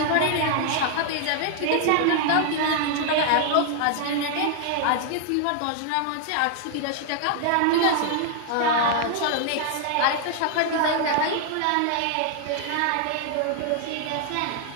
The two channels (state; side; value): different; both; correlation 0.00